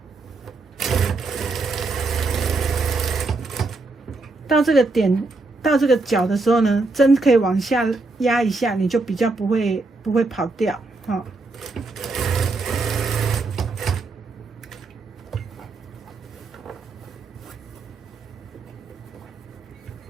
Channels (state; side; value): quieter; left; 3.5 dB